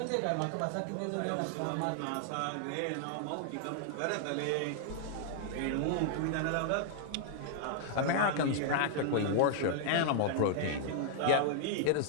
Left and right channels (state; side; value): different; both; correlation -0.01